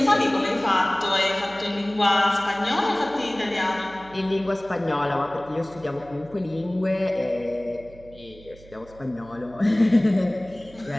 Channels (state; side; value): noise; right; hum, 22 dB below the sound